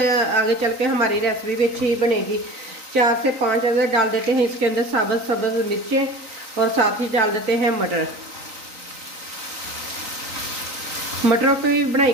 चल के हमारी रेसिपी भी अच्छी बनेगी। 4 से 5 अगर डाल देते हैं इसके अंदर सब्ज़ मिर्चें और साथ ही डाल देते हैं मटर। मटरों की भी बनाई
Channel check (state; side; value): late; left; 3.9 ms